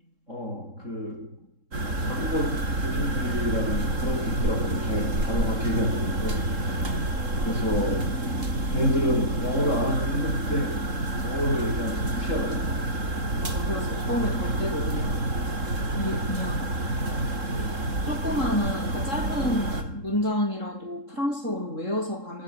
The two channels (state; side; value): late; left; 3.7 ms